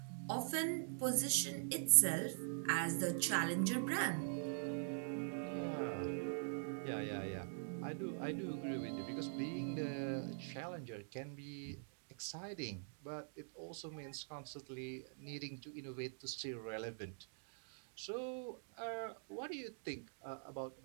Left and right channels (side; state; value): left; silent; digital silence